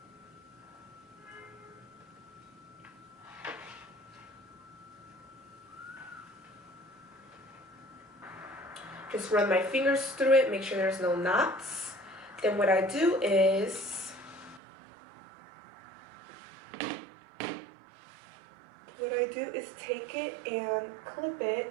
Just run my fingers through it, make sure there's no knots. Then what I do is, take it and clip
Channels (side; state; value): left; drops out; at 14.6 s